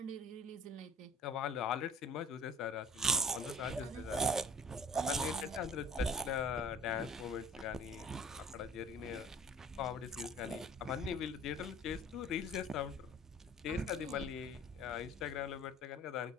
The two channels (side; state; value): both; normal; correlation 0.48